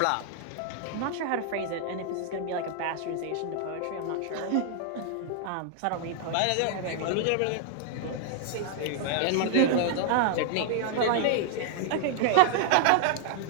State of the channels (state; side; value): different; both; correlation 0.00